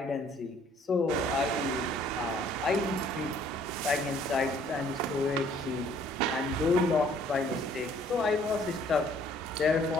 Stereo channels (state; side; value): normal; both; correlation 0.60